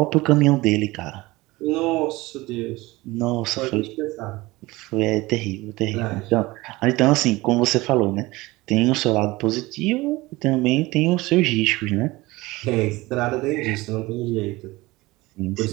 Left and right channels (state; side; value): quieter; left; 20.6 dB